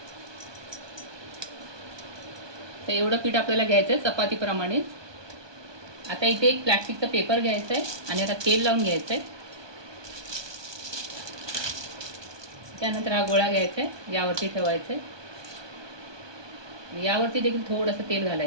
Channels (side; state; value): left; late; 1.2 ms